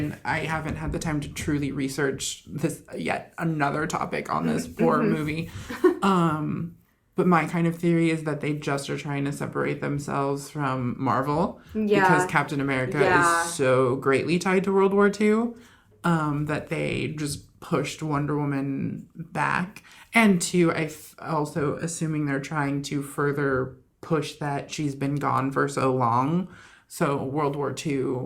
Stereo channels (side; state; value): both; identical; correlation 1.00